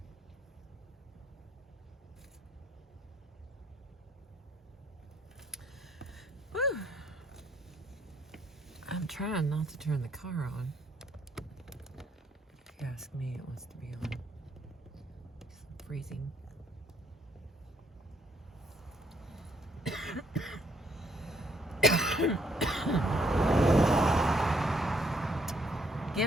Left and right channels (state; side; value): normal; both; correlation 0.69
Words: trying not to turn the car on. If you ask me, it wants to be on. It's freezing.